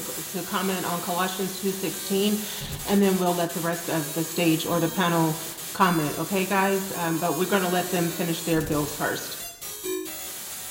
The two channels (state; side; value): identical; both; correlation 1.00